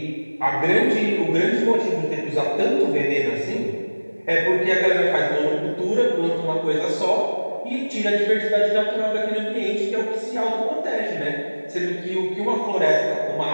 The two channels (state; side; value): inverted; both; correlation -1.00